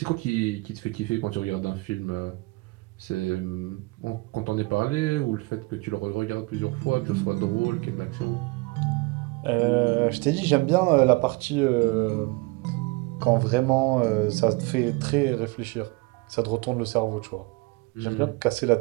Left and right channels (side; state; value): left; quieter; 25.2 dB